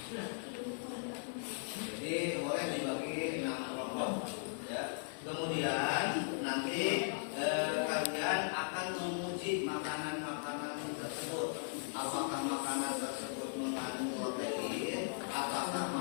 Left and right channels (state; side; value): silent; right; digital silence